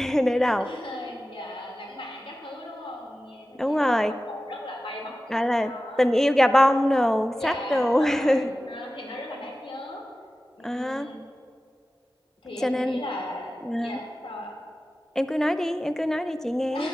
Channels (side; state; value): both; normal; correlation 0.95